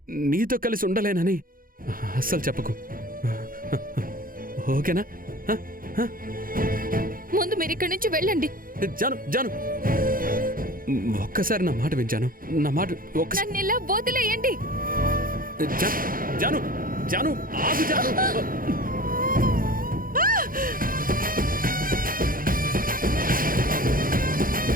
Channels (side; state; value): left; late; 0.41 ms